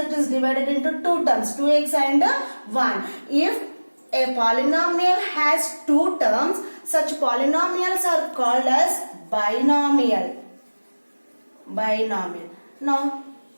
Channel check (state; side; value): inverted; both; correlation -1.00